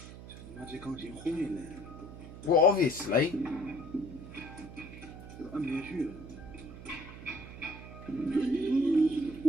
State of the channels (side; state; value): right; noise; hum, 13 dB below the sound